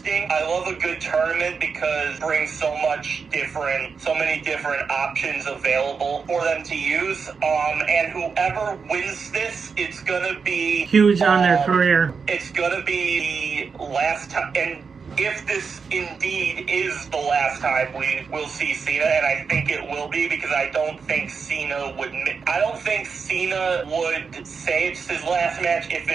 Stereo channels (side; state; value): left; quieter; 5.5 dB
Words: I love a good tournament because it brings so many different options available for them to use. And whoever wins this, it's gonna be huge on their career. It's gonna be the last time, and if this indeed is the last time we will see Cena, and I think it will be, because I don't think Cena would say it's his last match if